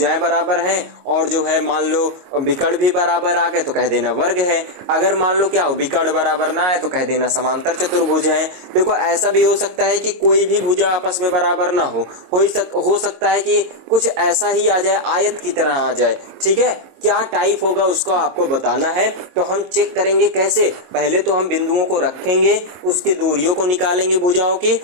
बराबर हैं, और जो है मान लो विकर्ण भी बराबर आ गए तो कह देना वर्ग है। अगर मान लो क्या हो विकर्ण बराबर ना है तो कह देना समांतर चतुर्भुज है। देखो ऐसा भी हो सकता है कि कोई भी भुजा आपस में बराबर ना हो सकता है कि कुछ ऐसा ही आ जाए, आयत की तरह आ जाए। ठीक है, क्या टाइप होगा उसका आपको बताना है। तो हम चेक करेंगे कैसे, पहले तो हम बिंदुओं को रखेंगे, उसके दूरियों को निकालेंगे भुजाओं की,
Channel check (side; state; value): left; late; 22 ms